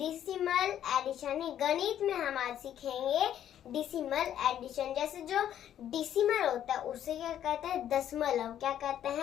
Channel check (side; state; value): right; quieter; 10.6 dB